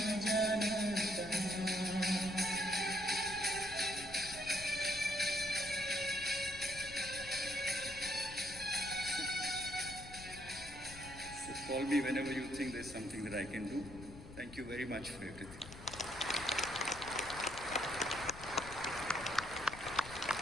जाना कहाँ. Call me whenever you think there's something that I can do. Thank you very much for everything.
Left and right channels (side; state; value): left; noise; rumble, 15 dB below the sound